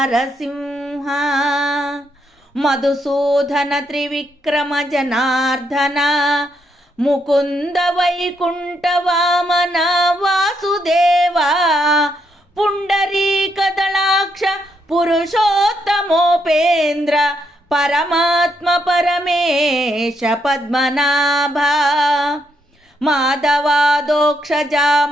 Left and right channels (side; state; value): both; normal; correlation 0.77